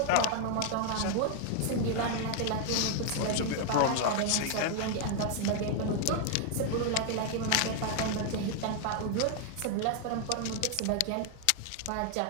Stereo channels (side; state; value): both; different; correlation 0.00